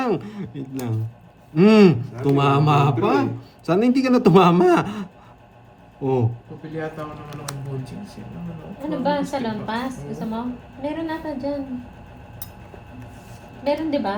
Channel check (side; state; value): both; identical; correlation 1.00